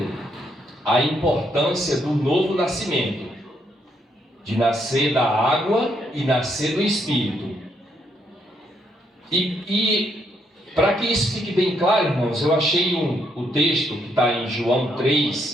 a importância do novo nascimento, de nascer da água e nascer do Espírito. E para que isso fique bem claro, irmãos, eu achei o texto que está em João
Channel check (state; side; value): normal; both; correlation 0.75